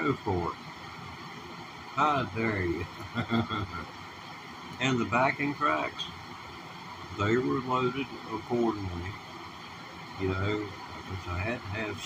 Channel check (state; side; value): identical; both; correlation 1.00